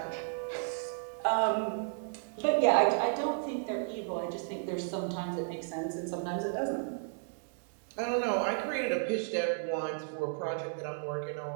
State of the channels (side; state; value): left; silent; 56 dB below the other